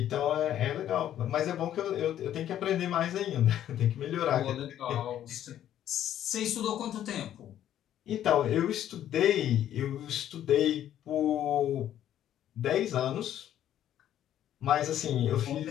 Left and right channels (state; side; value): quieter; right; 11.3 dB